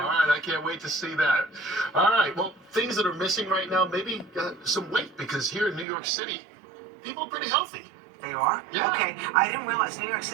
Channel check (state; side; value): drops out; left; at 5.9 s